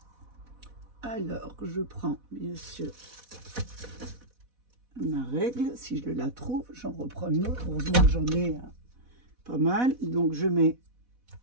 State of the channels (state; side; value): late; left; 4.1 ms